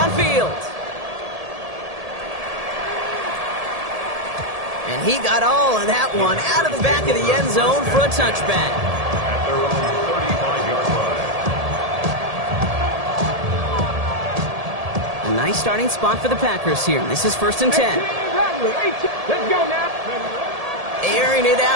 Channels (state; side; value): late; left; 1.7 ms